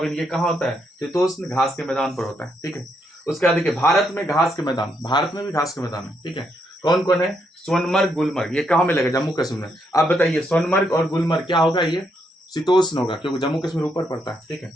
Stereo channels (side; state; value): both; normal; correlation 0.77